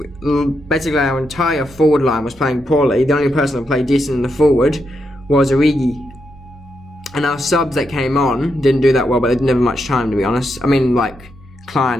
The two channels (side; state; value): both; normal; correlation 0.83